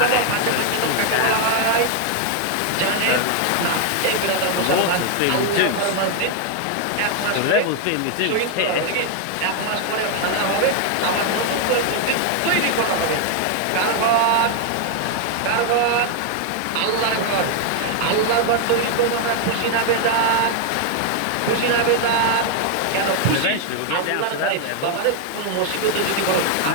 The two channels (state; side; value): different; both; correlation 0.00